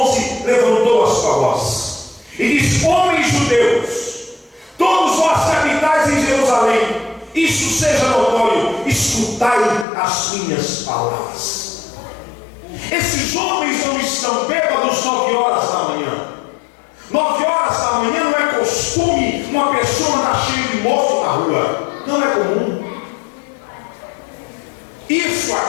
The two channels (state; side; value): drops out; right; at 9.9 s